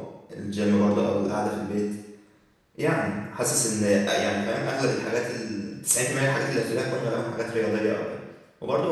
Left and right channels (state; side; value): identical; both; correlation 1.00